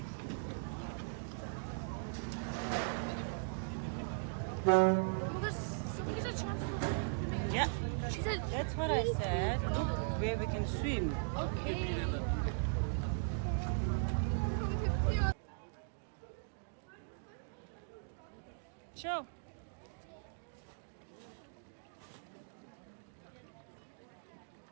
Yeah. She said, That's what I said. Look where we can swim. Show.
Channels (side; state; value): left; silent; digital silence